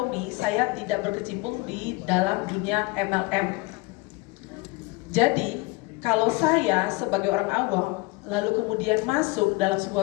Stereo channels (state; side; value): quieter; right; 23.7 dB